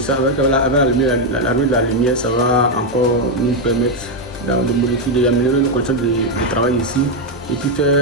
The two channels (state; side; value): normal; both; correlation 0.03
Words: avec l'arrivée de la lumière, ça va encore nous permettre de modifier, d'améliorer nos conditions de travail ici et puis